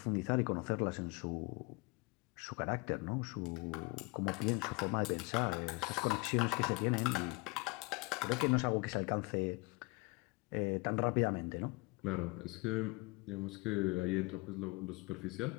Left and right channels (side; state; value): right; quieter; 26.3 dB